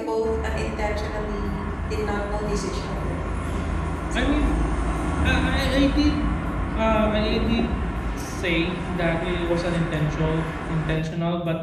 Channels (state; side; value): identical; both; correlation 1.00